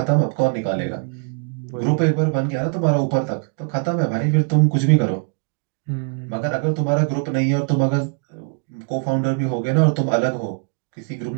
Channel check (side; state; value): left; quieter; 37.9 dB